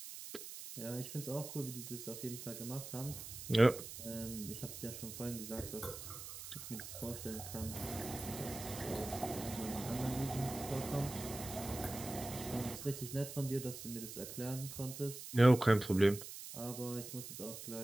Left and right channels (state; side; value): noise; right; hiss, 10 dB below the sound